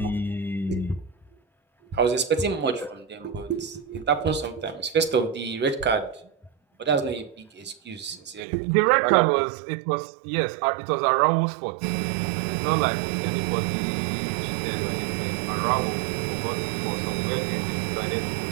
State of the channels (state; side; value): drops out; left; at 8.4 s